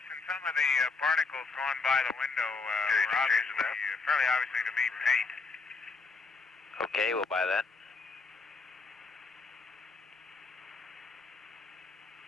some of the particles going by the window Okay, were obviously, that? fairly obviously to be paint. Okay, we'll buy that.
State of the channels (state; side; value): quieter; right; 4.2 dB